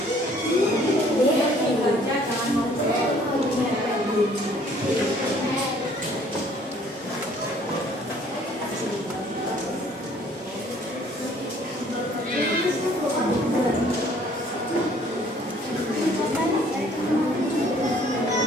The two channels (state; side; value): normal; both; correlation 0.58